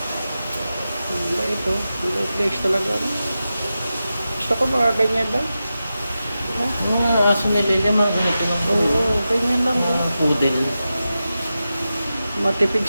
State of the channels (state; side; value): inverted; both; correlation -0.92